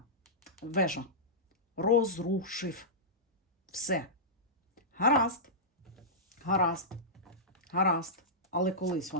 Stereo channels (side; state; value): both; normal; correlation -0.15